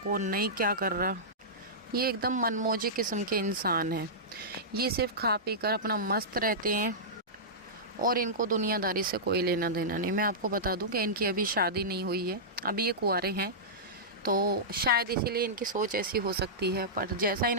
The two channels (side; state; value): both; normal; correlation -0.15